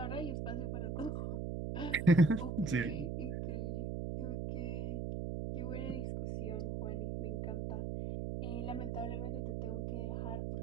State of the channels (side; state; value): right; noise; hum, 2 dB below the sound